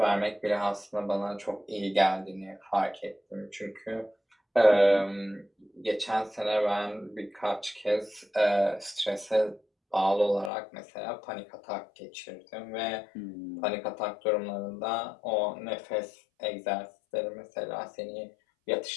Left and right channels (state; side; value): drops out; right; at 10.5 s